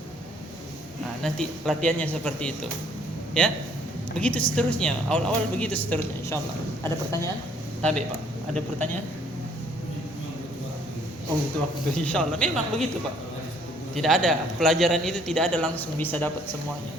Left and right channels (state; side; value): normal; both; correlation 0.62